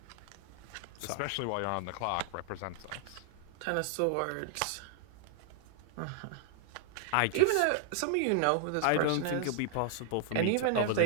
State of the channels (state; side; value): different; both; correlation 0.00